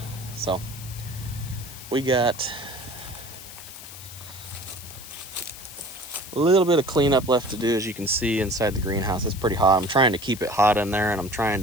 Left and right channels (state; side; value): noise; left; hiss, 14 dB below the sound